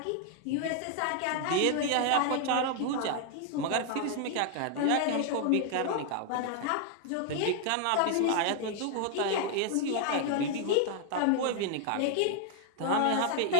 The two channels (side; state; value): both; different; correlation 0.00